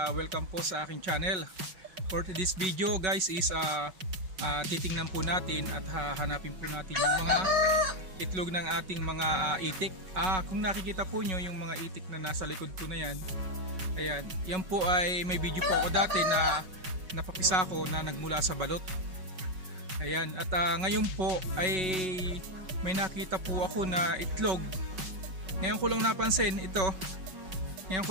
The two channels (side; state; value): left; late; 5.3 ms